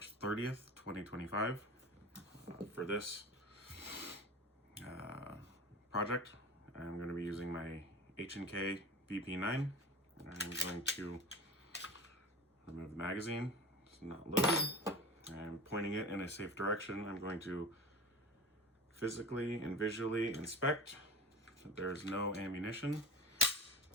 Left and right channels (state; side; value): normal; both; correlation 0.32